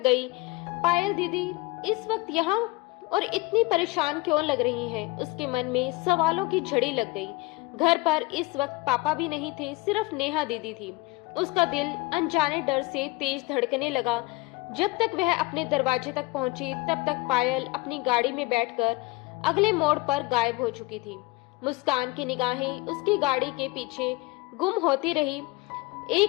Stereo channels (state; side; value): quieter; right; 22.5 dB